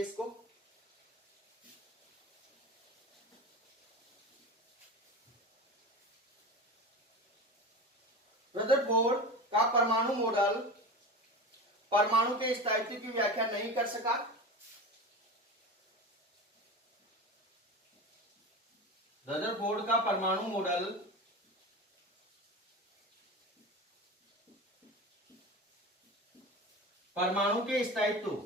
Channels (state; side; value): normal; both; correlation 0.28